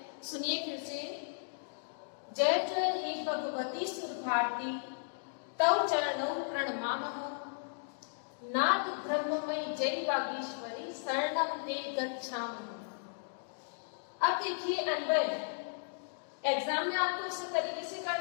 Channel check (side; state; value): right; silent; digital silence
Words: सुनिए फिर से। जय जय हे भगवती सुर भारती, तव चरणौ प्रणमामः। नाथ ब्रह्ममयी जय वागीश्वरी, शरणम ते गच्छामः। अब देखिए, अन्वय एग्जाम में आपको इस तरीके से